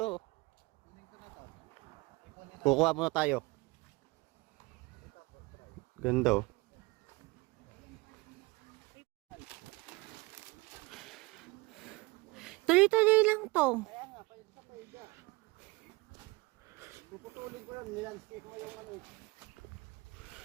Kukuha muna tayo. Ganda oh. Tuloy-tuloy lang to. Puputulin ko yan, nilandscape mo yung ano.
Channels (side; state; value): left; quieter; 24.2 dB